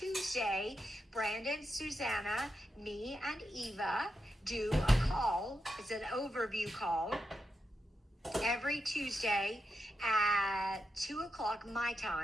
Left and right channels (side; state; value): both; normal; correlation 0.86